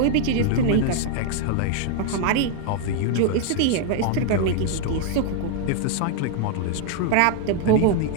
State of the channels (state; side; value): different; both; correlation 0.00